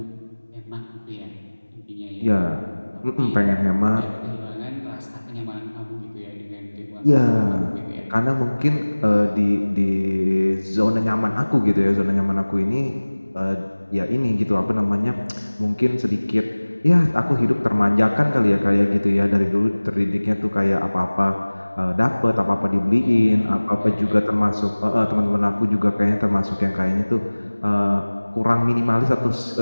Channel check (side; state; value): both; inverted; correlation -1.00